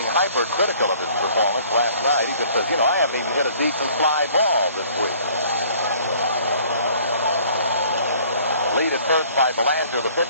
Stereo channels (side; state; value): both; inverted; correlation -0.56